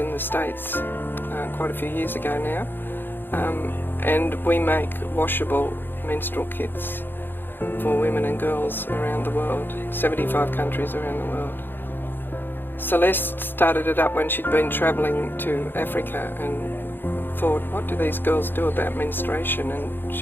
the States quite a few years ago now, and we make washable menstrual kits for women and girls around the world, 75 countries around the world. Celeste started it up when she'd been travelling to Africa and thought, what do these girls do about menstruation? And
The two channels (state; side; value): late; right; 0.098 ms